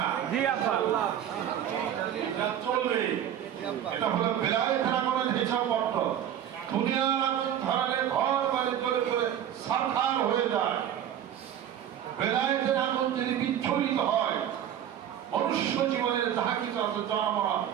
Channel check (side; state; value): left; quieter; 10.2 dB